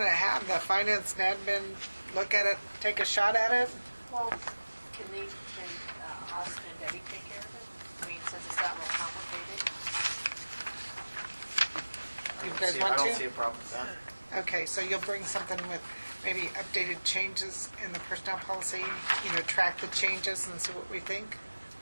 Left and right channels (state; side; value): inverted; both; correlation -1.00